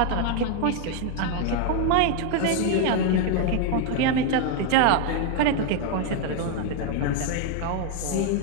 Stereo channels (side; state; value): both; different; correlation 0.01